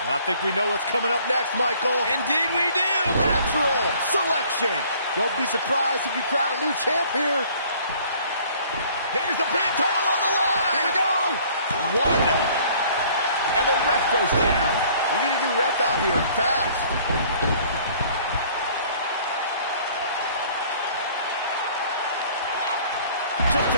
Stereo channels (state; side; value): inverted; both; correlation -0.55